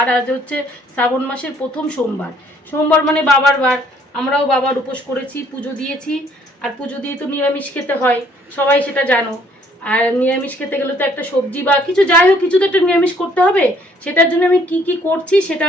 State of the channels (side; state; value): both; normal; correlation 0.62